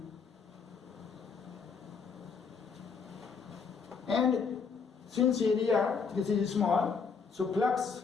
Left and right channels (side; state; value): right; quieter; 5.5 dB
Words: and since area this is small, so flux,